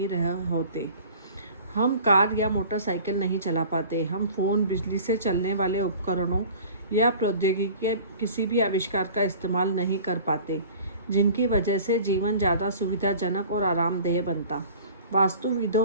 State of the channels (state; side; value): inverted; both; correlation -0.44